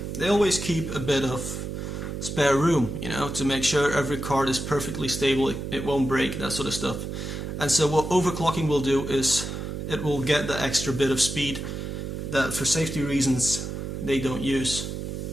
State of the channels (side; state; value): right; noise; hum, 5 dB below the sound